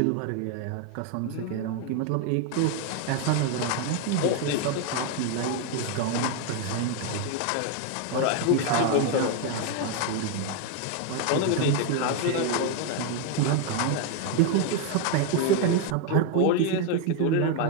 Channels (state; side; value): different; both; correlation 0.01